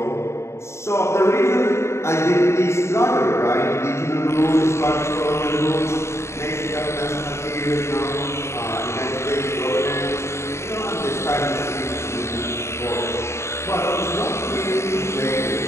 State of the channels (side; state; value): right; late; 0.13 ms